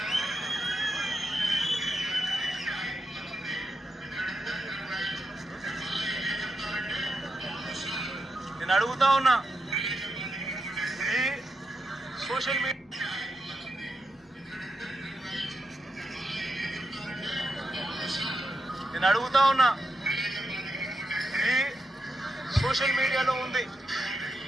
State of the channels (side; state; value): both; normal; correlation 0.86